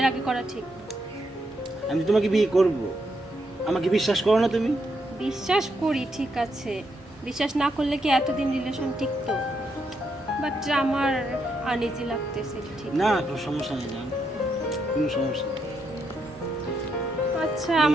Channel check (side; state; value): both; normal; correlation 0.79